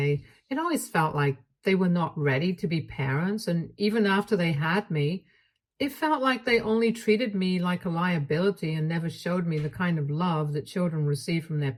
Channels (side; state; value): both; identical; correlation 1.00